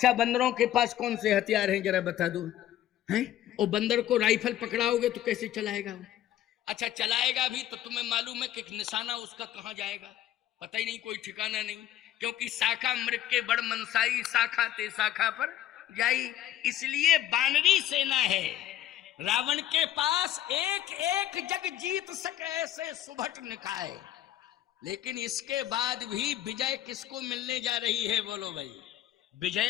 बंदरों के पास कौन से हथियार हैं जरा बता दो। हैं? और बंदर को राइफल पकड़ाओगे तो कैसे चलाएगा वो? अच्छा, चलाएगा भी तो तुम्हें मालूम है कि निशाना उसका कहाँ जाएगा? पता ही नहीं, कोई ठिकाना नहीं, क्योंकि शाखा मृग के बड़ मनसाई, शाखा ते शाखा पर जाई। इसलिए बानरी सेना है। रावण के पास एक एक जग जीत सके ऐसे सुभट निकाय। लेकिन इसके बाद भी विजय किसको मिलने जा रही है? बोलो भाई।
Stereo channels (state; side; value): quieter; right; 12.4 dB